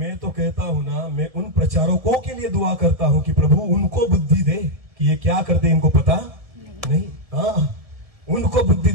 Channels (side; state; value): left; late; 1.7 ms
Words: तो कहता हूं ना, मैं उन प्रचारकों के लिए दुआ करता हूं कि प्रभु उनको बुद्धि दे कि ये क्या करते इनको पता नहीं। हाँ, उनको बुद्धि